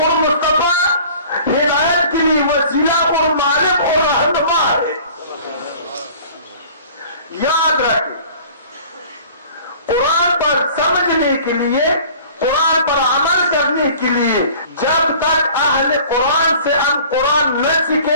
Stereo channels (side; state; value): both; inverted; correlation -0.47